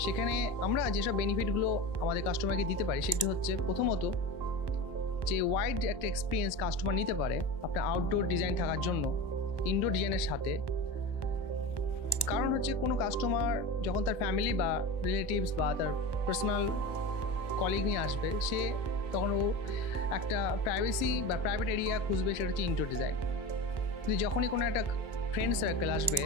সেখানে আমরা যেসব বেনিফিটগুলো আমাদের কাস্টমারকে দিতে পারি সেটি হচ্ছে, প্রথমত যে ওয়াইড একটা এক্সপিরিয়েন্স কাস্টমার নিতে পারে আপনার আউটডোর ডিজাইন থাকার জন্য ইনডোর ডিজাইনের সাথে। কারণ হচ্ছে কোনো কাস্টমার যখন তার ফ্যামিলি বা রিলেটিভস বা তার পার্সোনাল কলিগ নিয়ে আসবে, সে তখন ও একটা প্রাইভেসি বা প্রাইভেট এরিয়া খুঁজবে, সেটা হচ্ছে ইনডোর ডিজাইন। কিন্তু যখনই কোনো একটা ফ্রেন্ড সার্কেল আসবে,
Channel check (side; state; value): right; late; 1.2 ms